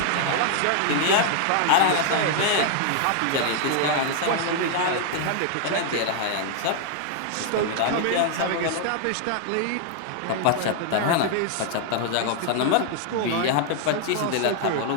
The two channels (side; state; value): both; different; correlation 0.00